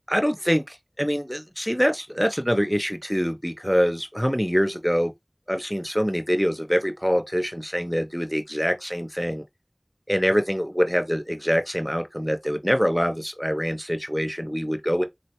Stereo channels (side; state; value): both; identical; correlation 1.00